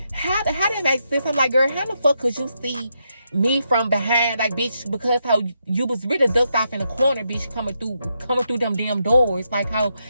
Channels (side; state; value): both; inverted; correlation -0.81